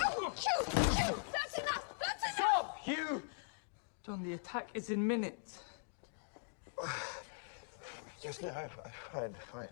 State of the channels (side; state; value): right; silent; digital silence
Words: That's enough! That's enough! Stop, Hugh! John, the attack is in minutes. Just no, fine.